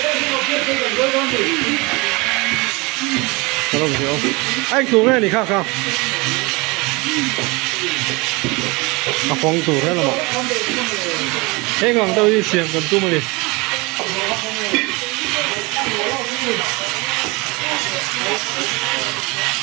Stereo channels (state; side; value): quieter; left; 25.5 dB